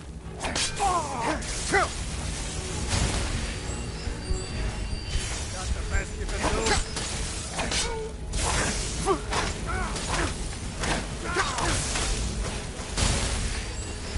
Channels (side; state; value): both; identical; correlation 1.00